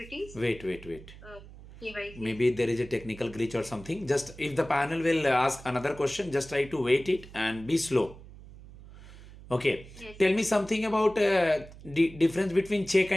Wait. KYC. Maybe there is a technical glitch or something. Just if the panel will ask another question, just try to wait it and be slow. Okay. Yes. Tell me something about difference between check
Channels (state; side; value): noise; right; hum, 18 dB below the sound